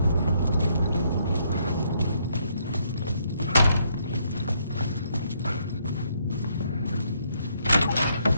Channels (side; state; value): both; inverted; correlation -0.72